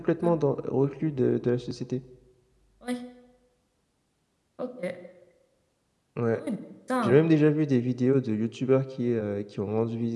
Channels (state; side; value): identical; both; correlation 1.00